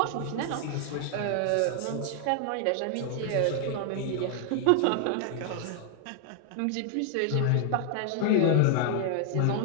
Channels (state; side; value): different; both; correlation 0.00